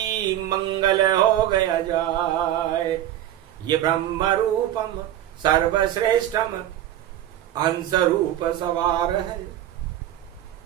मंगल हो गया जाय। ये ब्रह्म रूपम सर्वश्रेष्ठम हंस रूप सवार है,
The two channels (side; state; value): left; quieter; 12.2 dB